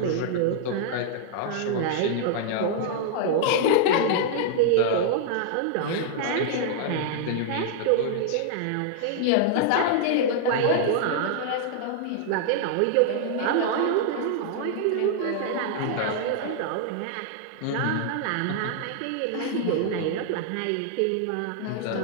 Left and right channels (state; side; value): different; both; correlation -0.01